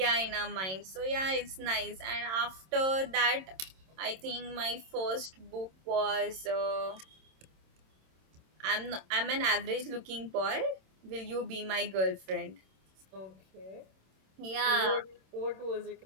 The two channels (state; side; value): late; left; 26 ms